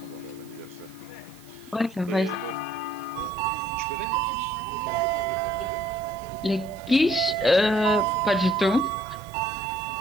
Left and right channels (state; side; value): noise; right; hiss, 24 dB below the sound